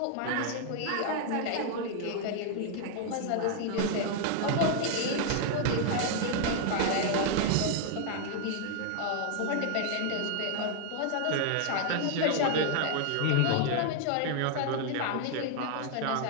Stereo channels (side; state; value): both; different; correlation 0.00